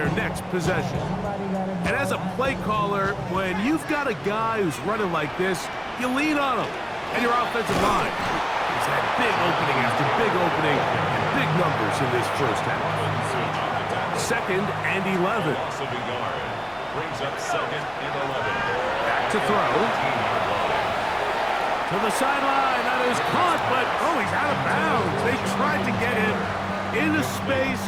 next possession. And as a play caller, when you've got a guy who's running like this, you lean on him. And your offensive line has had big opening after big opening and big numbers in this first half. Second and 11. Loss of a yard. Brings up second and 11. Back to throw. To the sideline. That is caught, but, he's out of bounds. They tried to get him into space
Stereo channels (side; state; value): both; identical; correlation 1.00